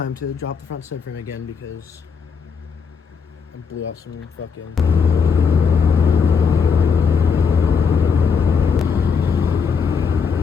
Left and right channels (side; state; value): right; quieter; 5.9 dB